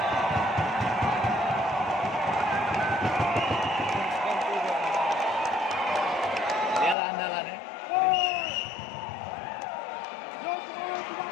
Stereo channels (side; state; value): right; drops out; at 7.0 s